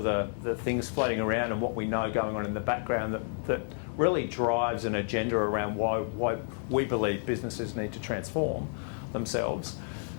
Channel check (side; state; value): right; silent; 57 dB below the other